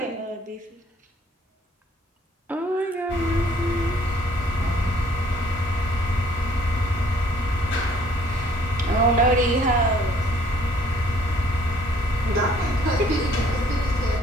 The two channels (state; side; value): normal; both; correlation 0.60